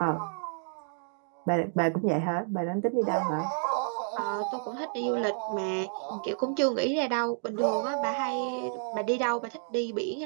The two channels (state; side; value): silent; left; digital silence